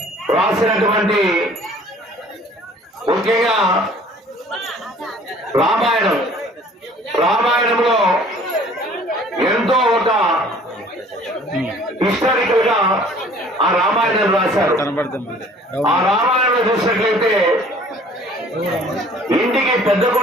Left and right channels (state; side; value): normal; both; correlation 0.52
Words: రాసినటువంటి ముఖ్యంగా రామాయణంలో ఎంతో ఒక హిస్టారికల్ గా ఆ రామాయణం రాశారు. ఆ రామాయణంలో చూసినట్లయితే ఇంటికి పెద్ద